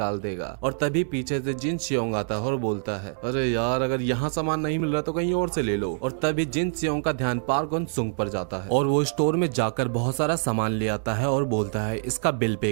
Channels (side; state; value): left; silent; digital silence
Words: देगा। और तभी पीछे से जिन सियोंग आता है और बोलता है अरे यार अगर यहाँ सामान नहीं मिल रहा तो कहीं और से ले लो। और तभी जिन सियोंग का ध्यान पार्क उन सुंग पर जाता है और वो स्टोर में जाकर बहुत सारा सामान ले आता है और बोलता है इसका बिल